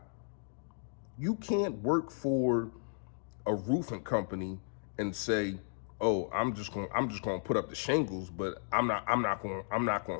You can't work for a roofing company and say, "Oh, I'm just going to put up the shingles, but I'm not going to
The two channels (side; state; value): right; silent; 55 dB below the other